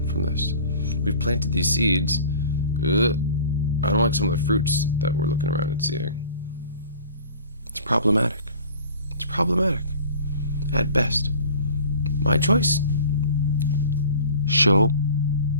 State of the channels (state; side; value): inverted; both; correlation -0.44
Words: from this? We've planted these seeds. I don't like some of the fruits that we're looking around and seeing. It's problematic. It's problematic. At best. My choice. Show